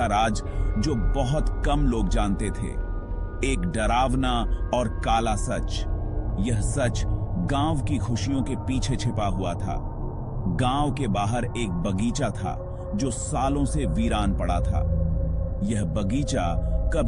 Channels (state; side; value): identical; both; correlation 1.00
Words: राज जो बहुत कम लोग जानते थे। एक डरावना और काला सच। यह सच गांव की खुशियों के पीछे छिपा हुआ था। गांव के बाहर एक बगीचा था जो सालों से वीरान पड़ा था। यह बगीचा